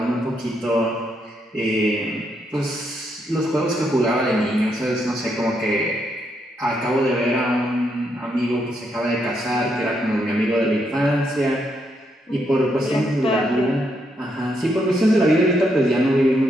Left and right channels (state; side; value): normal; both; correlation 0.78